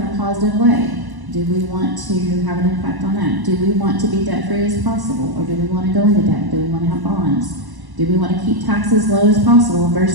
a positive way. Do we want to have an impact on that? Do we want to be debt-free as possible, or do we want to go into debt? Do we want to have bonds? Do we want to keep taxes low as possible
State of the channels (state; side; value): late; left; 1.1 ms